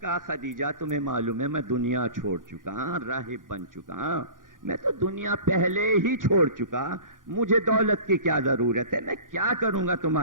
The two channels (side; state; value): left; late; 0.89 ms